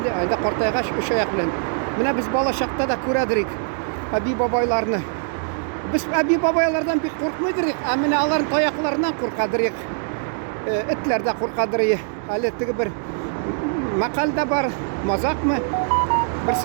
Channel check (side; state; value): left; silent; digital silence